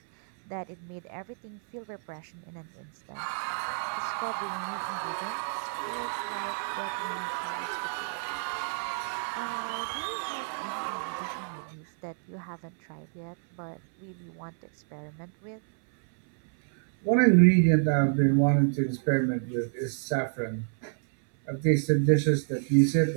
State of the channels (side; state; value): left; silent; 59 dB below the other